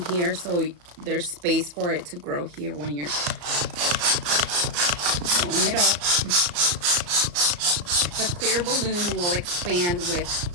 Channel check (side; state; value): left; late; 34 ms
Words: here so there's space for it to grow here when you're blowing it up. The clear balloon will expand